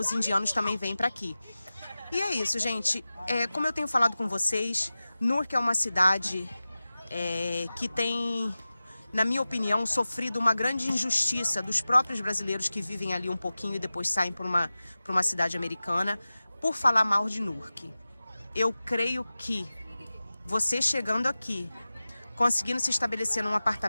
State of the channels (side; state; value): both; inverted; correlation -0.96